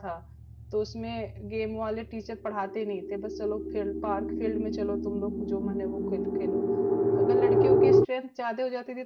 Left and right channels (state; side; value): identical; both; correlation 1.00